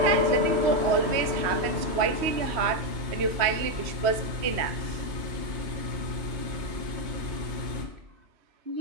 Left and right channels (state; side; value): late; left; 3.1 ms